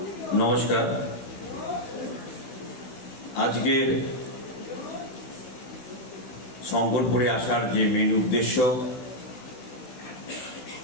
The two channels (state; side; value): late; right; 16 ms